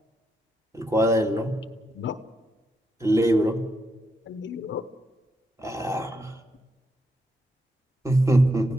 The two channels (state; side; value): normal; both; correlation 0.82